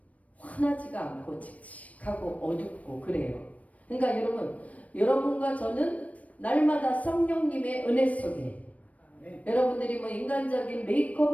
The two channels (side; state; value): right; late; 0.068 ms